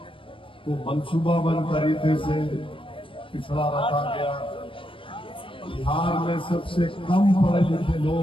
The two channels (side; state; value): right; late; 0.25 ms